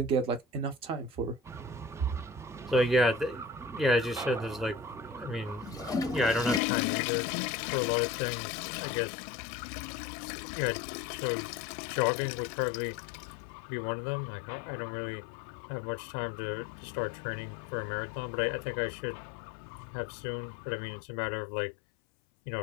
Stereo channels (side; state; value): right; drops out; at 6.6 s